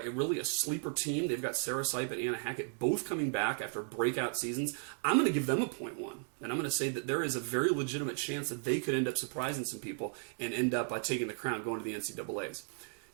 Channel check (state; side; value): silent; left; 54 dB below the other